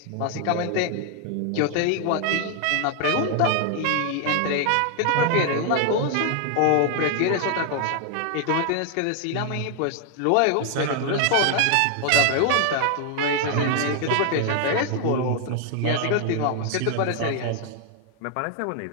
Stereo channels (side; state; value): both; different; correlation 0.00